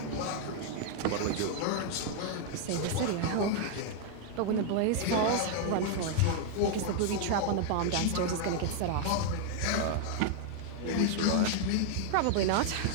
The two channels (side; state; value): both; different; correlation 0.00